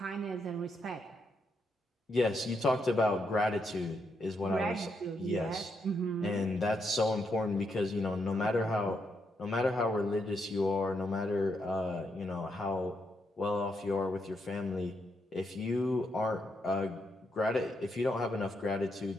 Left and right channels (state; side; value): normal; both; correlation 0.80